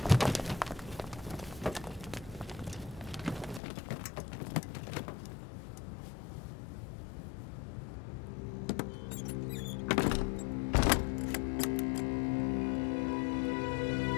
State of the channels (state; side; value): drops out; right; at 3.6 s